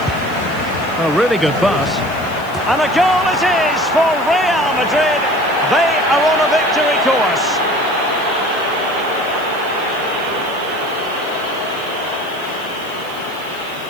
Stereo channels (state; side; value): noise; right; hiss, 22 dB below the sound